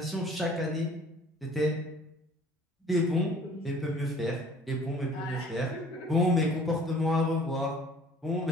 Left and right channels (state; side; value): normal; both; correlation 0.52